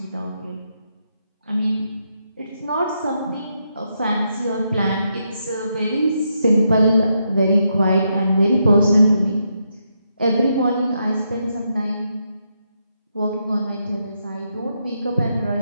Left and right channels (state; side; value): inverted; both; correlation -0.81